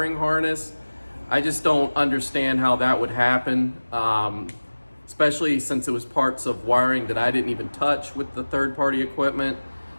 harness. I just don't understand how that would happen, especially since it was parts of wiring that I didn't even touch with the third-party equipment.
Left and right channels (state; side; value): inverted; both; correlation -1.00